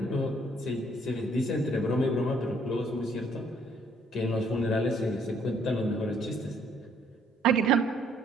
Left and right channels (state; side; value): normal; both; correlation 0.65